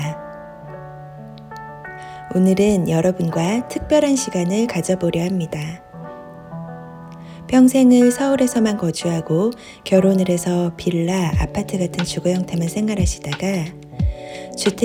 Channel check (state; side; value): identical; both; correlation 1.00